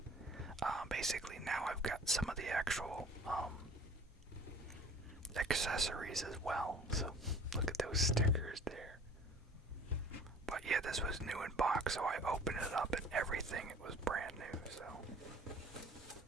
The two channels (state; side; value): normal; both; correlation 0.48